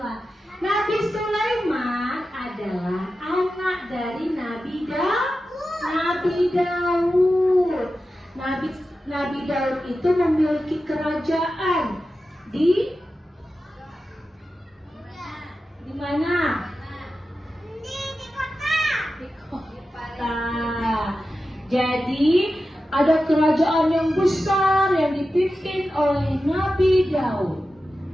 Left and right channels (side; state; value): both; normal; correlation 0.92